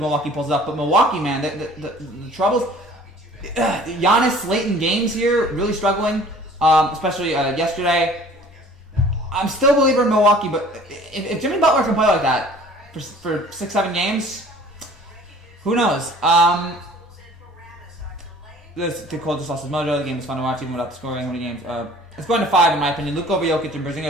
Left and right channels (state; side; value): normal; both; correlation 0.50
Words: pulls it up. But Milwaukee, man, the troubles. Giannis late in games here, really struggling, especially yesterday. I'm still a believer in Milwaukee, but if Jimmy Butler can play like that for 6-7 games, who knows? The cold just lost his mojo. The game was fun to watch even without the scoring. How many games? It's going to 5 in my opinion. Luke over Jokic and